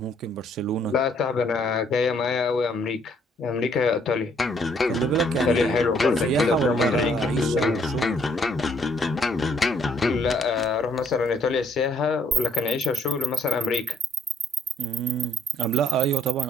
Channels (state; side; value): normal; both; correlation 0.66